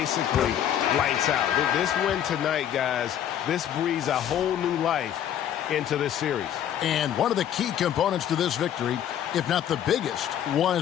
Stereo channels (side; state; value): right; quieter; 10.3 dB